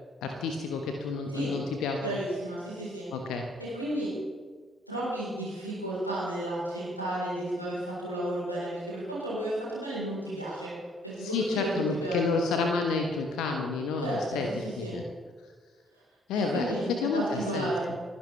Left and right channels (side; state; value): both; normal; correlation 0.61